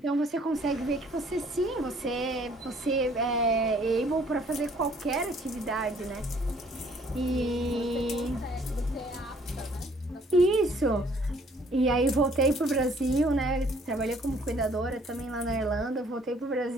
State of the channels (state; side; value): normal; both; correlation 0.60